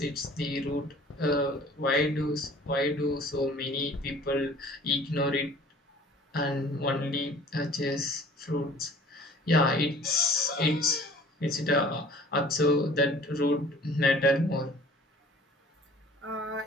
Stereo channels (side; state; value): both; normal; correlation 0.49